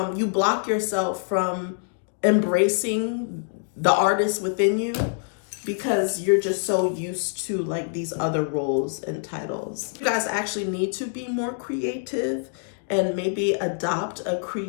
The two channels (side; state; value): right; silent; digital silence